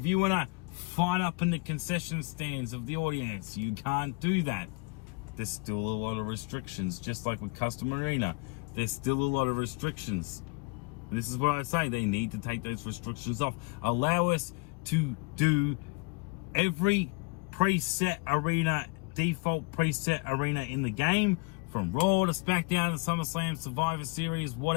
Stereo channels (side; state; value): right; quieter; 29.1 dB